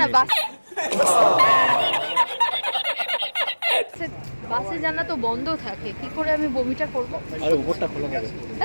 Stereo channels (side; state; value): both; inverted; correlation -1.00